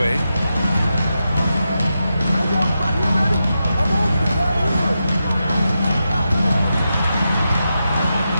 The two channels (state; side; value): inverted; both; correlation -0.88